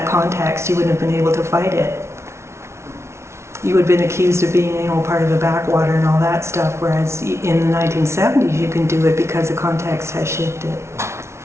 context. You wouldn't have been able to fight it. You would have been accused of being, part of the backwater and all that stuff, whereas in the 1970s you can do it because the context has shifted.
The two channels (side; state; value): left; late; 0.13 ms